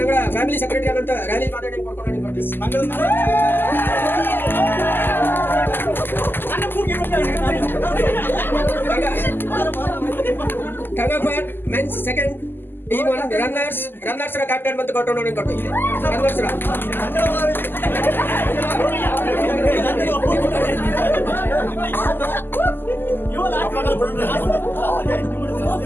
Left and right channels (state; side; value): late; right; 0.096 ms